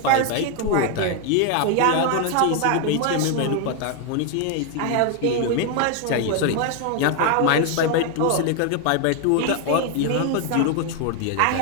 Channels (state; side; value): different; both; correlation 0.01